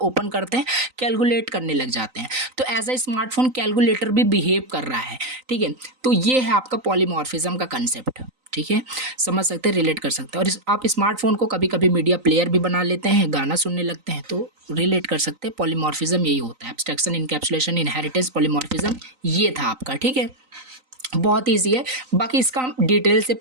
करते हैं, कैलकुलेट करने लग जाते हैं। तो एज अ स्मार्टफोन कैलकुलेटर भी बिहेव कर रहा है, ठीक है। तो ये है आपका पॉलीमॉर्फिज्म का कंसेप्ट, ठीक है। समझ सकते हैं, रिलेट कर सकते हैं। और आप स्मार्टफोन को कभी कभी मीडिया प्लेयर भी बना लेते हैं, गाना सुनने लगते हैं, तो रिलेट कर सकते हैं। पॉलीमॉर्फिज्म यही होता है, एब्स्ट्रैक्शन, इनकैप्सुलेशन, इनहेरिटेंस, पॉलीमॉर्फिज्म, ये था आपका, ठीक है। बहुत ईजी है, बाकी इसका हम डिटेल से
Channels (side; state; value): left; late; 3.9 ms